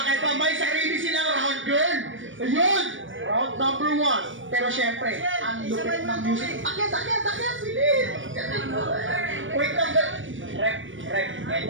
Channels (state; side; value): late; left; 0.56 ms